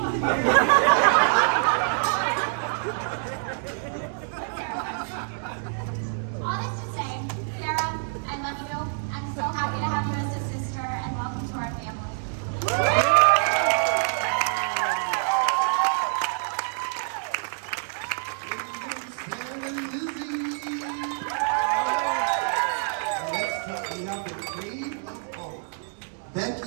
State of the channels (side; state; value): left; silent; digital silence